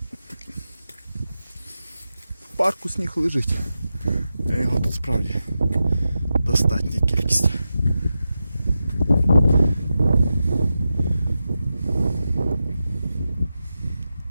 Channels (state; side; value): inverted; both; correlation -0.91